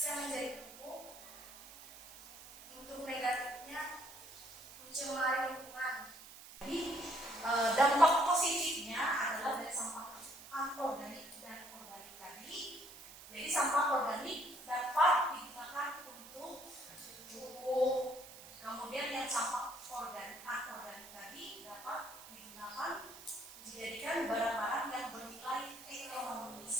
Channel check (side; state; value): right; noise; hiss, 16 dB below the sound